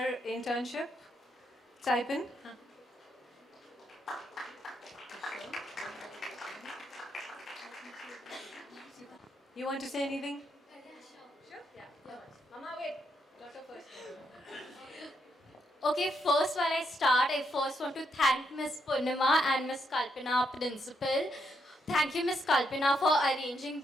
internship type in. You want to say anything? Sure? Yeah. Mama, wait. Daughter first. Okay, first while I start, I first want to thank Miss Purnima and Miss Kalpana, principal. Thank you, Miss Kalpana, for arranging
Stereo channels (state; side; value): normal; both; correlation 0.78